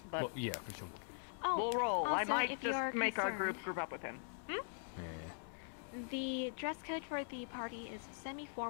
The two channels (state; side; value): silent; right; digital silence